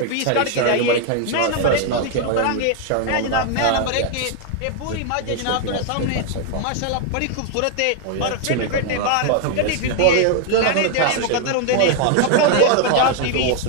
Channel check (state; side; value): different; both; correlation 0.00